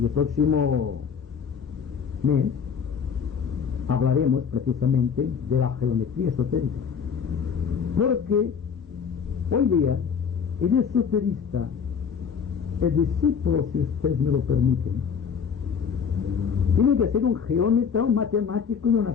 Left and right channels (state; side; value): quieter; right; 6.7 dB